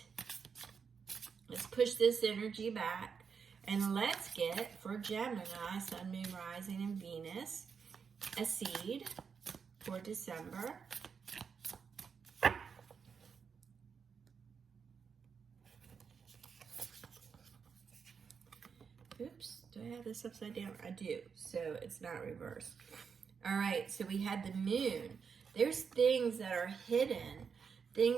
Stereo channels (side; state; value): left; quieter; 6.2 dB